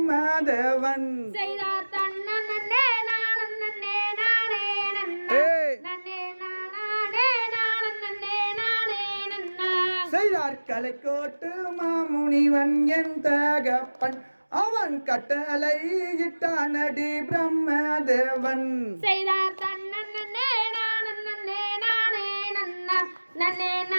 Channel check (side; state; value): both; inverted; correlation -1.00